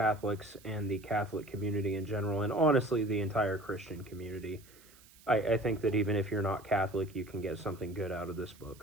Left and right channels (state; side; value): noise; right; hiss, 25 dB below the sound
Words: and the Catholic community in general, and honestly the entire Christian community. I think that even if you're not Catholic, you can get something good out of this